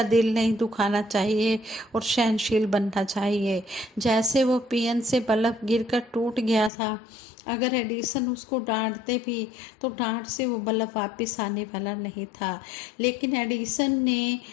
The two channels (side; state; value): right; drops out; at 6.7 s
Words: दिल नहीं दुखाना चाहिए और सहनशील बनना चाहिए। जैसे वो पियन से बल्ब गिरकर टूट गया था, अगर एडिसन उसको डांटते भी तो डांट से वो बल्ब वापस आने वाला नहीं था, लेकिन एडिसन ने